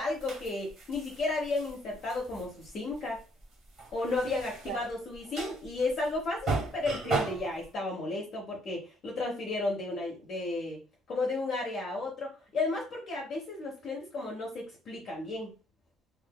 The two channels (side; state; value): both; normal; correlation 0.67